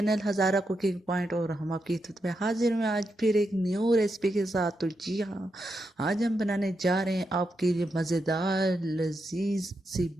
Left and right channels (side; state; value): both; normal; correlation 0.84